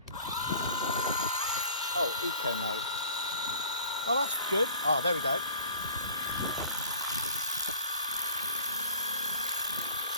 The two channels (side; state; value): both; inverted; correlation -0.49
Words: Oh, eco mode. Oh, that's good. Oh, there we go.